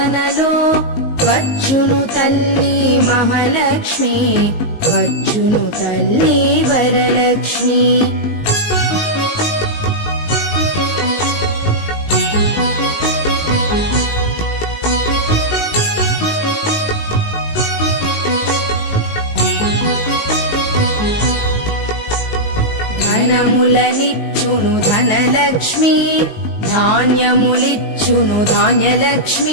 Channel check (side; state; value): right; late; 19 ms